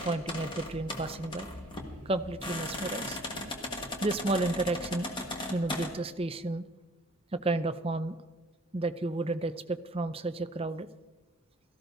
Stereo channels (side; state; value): both; normal; correlation 0.54